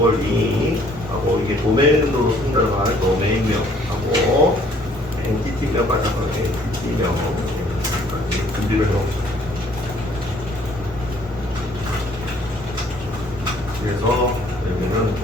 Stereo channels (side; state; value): both; normal; correlation 0.60